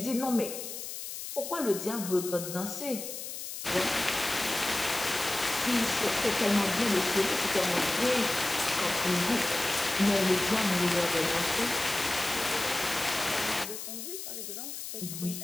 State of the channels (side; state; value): left; noise; hiss, 8 dB below the sound